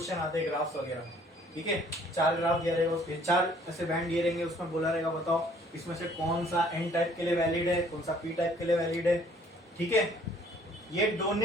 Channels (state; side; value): normal; both; correlation 0.58